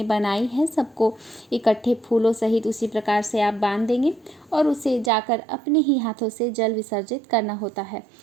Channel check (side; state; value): left; drops out; at 5.1 s